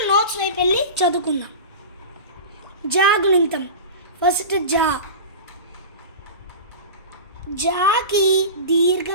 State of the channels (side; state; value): both; inverted; correlation -0.30